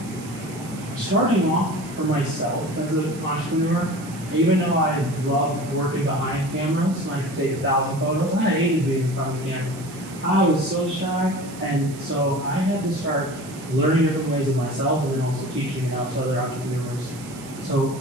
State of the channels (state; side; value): noise; right; hiss, 18 dB below the sound